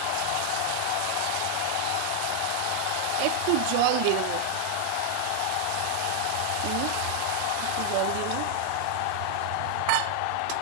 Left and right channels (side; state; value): both; different; correlation 0.00